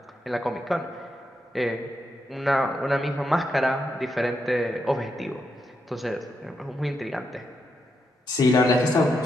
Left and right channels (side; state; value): both; normal; correlation 0.82